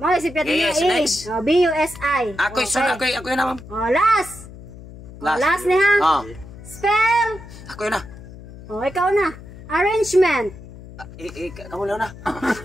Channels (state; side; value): noise; left; hum, 16 dB below the sound